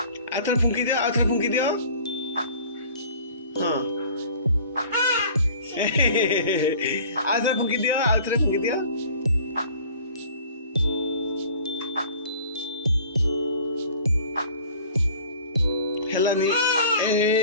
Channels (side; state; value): both; inverted; correlation -0.48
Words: ଆଉଥରେ ଫୁଙ୍କି ଦିଅ, ଆଉଥରେ ଫୁଙ୍କି ଦିଅ। ହଁ ଆଉଥରେ ଫୁଙ୍କି ଦିଅ, ଆଉଥରେ ଫୁଙ୍କି ଦିଅ। ହେଲାନି